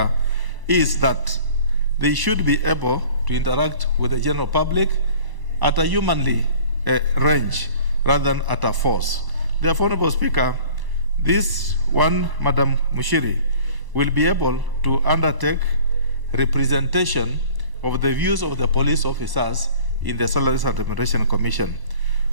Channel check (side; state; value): left; late; 1.0 ms